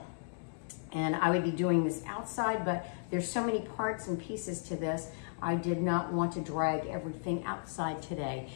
And I would be doing this outside, but there's so many parts and pieces to this, I did not want to drag everything outside today.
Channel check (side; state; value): right; silent; 55 dB below the other